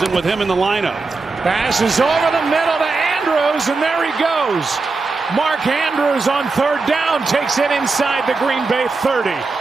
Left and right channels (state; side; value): quieter; left; 4.0 dB